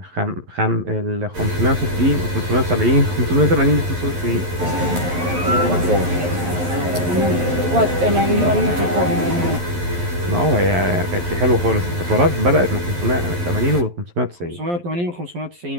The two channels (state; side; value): late; left; 11 ms